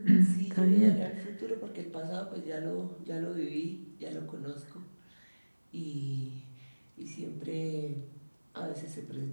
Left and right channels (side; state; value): both; inverted; correlation -1.00